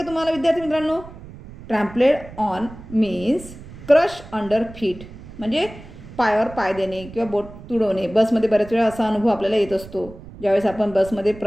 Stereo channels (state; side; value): noise; right; rumble, 16 dB below the sound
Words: तुम्हाला विद्यार्थी मित्रांनो? Trampled on means crush under feet, म्हणजे पायावर पाय देणे किंवा बोट तुडवणे. बसमध्ये बऱ्याच वेळा असा अनुभव आपल्याला येत असतो. ज्यावेळेस आपण बसमध्ये